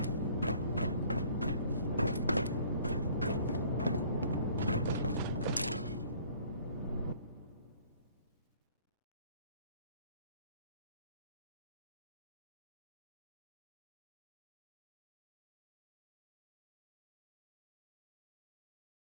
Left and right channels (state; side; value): inverted; both; correlation -0.56